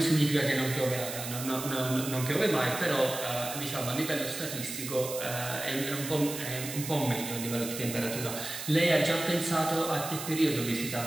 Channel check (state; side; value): noise; right; hiss, 7 dB below the sound